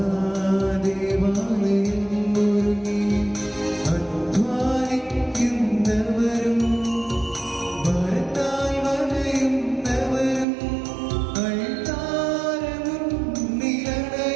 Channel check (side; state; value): left; drops out; at 10.5 s